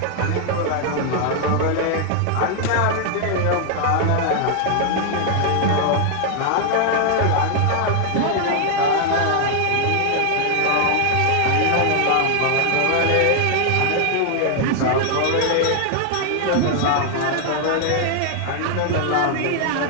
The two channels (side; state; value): both; different; correlation 0.00